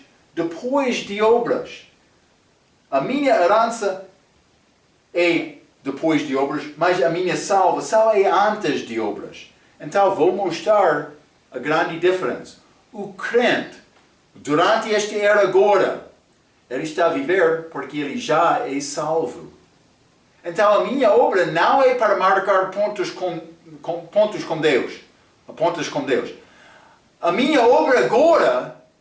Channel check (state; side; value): identical; both; correlation 1.00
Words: depois de obras. A minha herança é depois de obras, mas a minha salvação é antes de obras. Então vou mostrar a grande diferença. O crente, Durante esta era agora, ele está a viver porque ele já é salvo. Então a minha obra não é para marcar pontos com Deus. Pontos com Deus. A minha obra agora